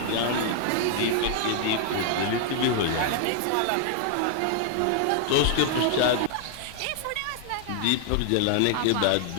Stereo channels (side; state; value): both; different; correlation 0.00